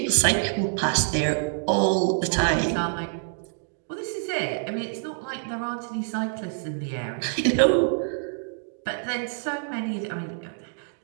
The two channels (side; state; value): left; silent; digital silence